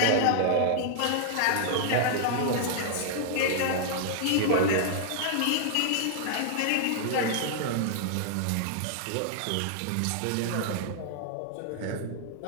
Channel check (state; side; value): different; both; correlation -0.01